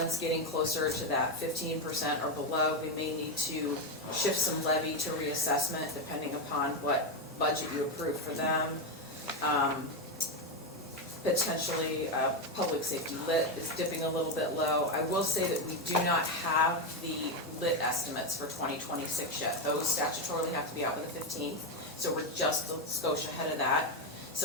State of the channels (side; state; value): both; normal; correlation 0.09